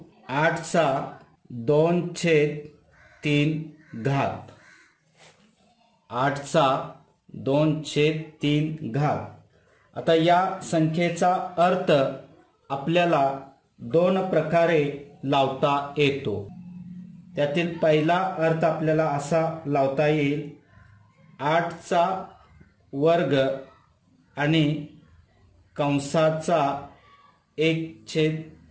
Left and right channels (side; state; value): both; identical; correlation 1.00